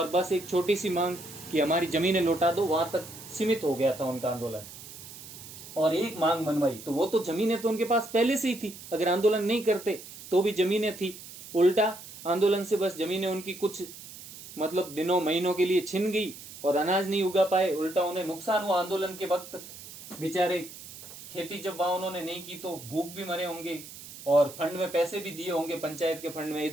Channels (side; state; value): right; noise; hiss, 15 dB below the sound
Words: बस एक छोटी सी मांग कि हमारी जमीनें लौटा दो, वहां तक सीमित हो गया था उनका आंदोलन। और एक मांग मनवाई, तो वो तो जमीनें तो उनके पास पहले से ही थी, अगर आंदोलन नहीं करते तो भी जमीनें थी। उल्टा आंदोलन से बस जमीनें उनकी कुछ मतलब दिनों महीनों के लिए छिन गई और अनाज नहीं उगा पाए, उल्टा उन्हें नुकसान हुआ। आंदोलन के वक्त बेचारे खेती जब वहां उन्होंने नहीं की तो भूख भी मरे होंगे और फंड में पैसे भी दिए होंगे, पंचायत के फंड में,